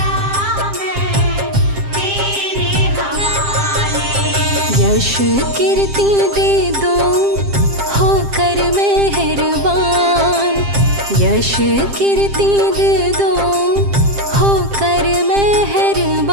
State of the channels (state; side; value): late; left; 7.5 ms